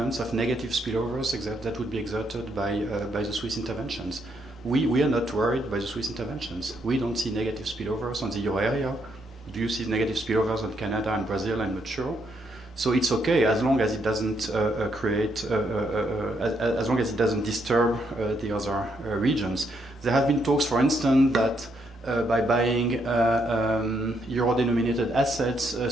of negative spillovers that would be exerted by the Swiss interventions. We are not worried by the Swiss interventions. We don't see negative spillovers on the euro area. Do you see negative spillovers on Canada and Brazil? I'm not sure. So it's okay as long as it doesn't as long as it doesn't disturb the other regions. There have been talks, for instance, that by buying euro-denominated assets,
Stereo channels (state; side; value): normal; both; correlation 0.75